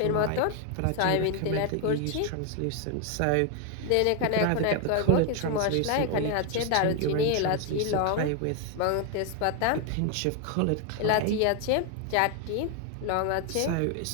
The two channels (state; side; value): different; both; correlation 0.01